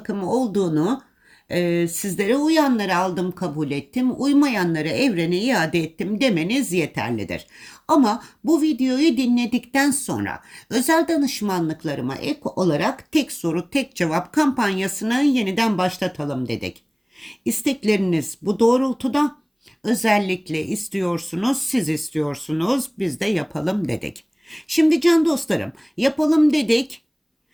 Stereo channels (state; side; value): identical; both; correlation 1.00